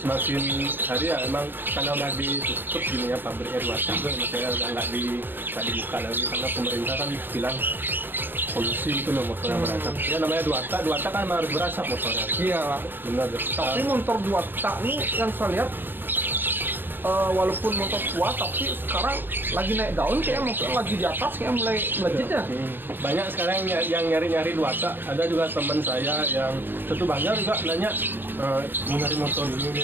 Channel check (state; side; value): late; left; 0.095 ms